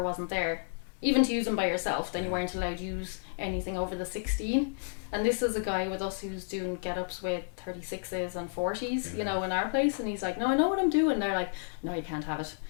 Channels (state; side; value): silent; right; digital silence